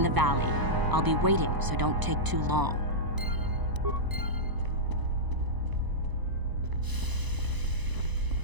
the valley. I'll be waiting, so don't take too long.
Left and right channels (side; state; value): left; late; 1.0 ms